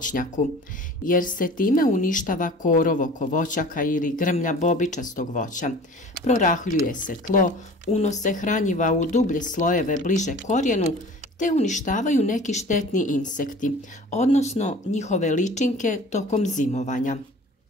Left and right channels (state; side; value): normal; both; correlation 0.44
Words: jer se time uništava korov oko voćaka ili grmlja bobičastog voća, prorahljuje se tlo, unose hranjiva u dublje slojeve bliže korijenu, te uništavaju neki štetni insekti, odnosno njihove ličinke tokom zimovanja.